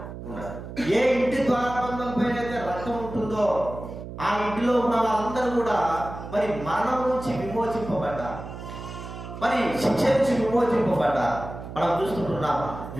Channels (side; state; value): right; noise; hum, 11 dB below the sound